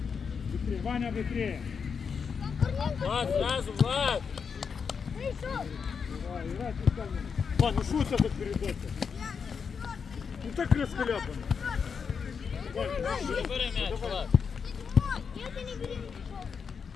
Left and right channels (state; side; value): quieter; right; 6.1 dB